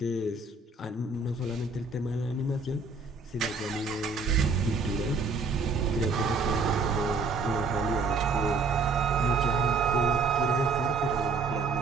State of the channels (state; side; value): quieter; left; 4.2 dB